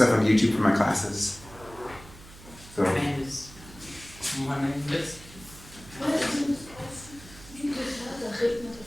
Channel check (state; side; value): noise; right; hum, 19 dB below the sound